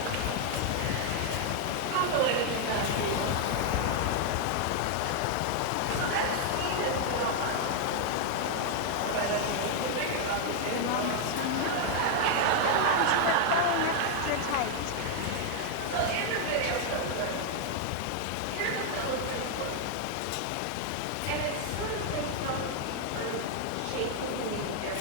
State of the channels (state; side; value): different; both; correlation 0.00